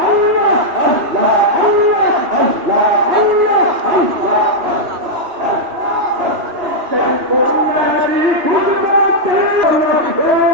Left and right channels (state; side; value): late; left; 3.1 ms